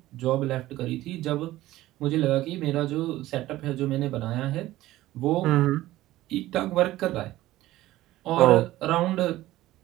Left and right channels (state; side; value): quieter; left; 16.0 dB